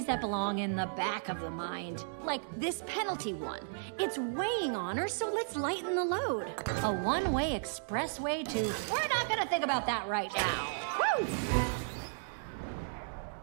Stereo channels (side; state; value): left; silent; digital silence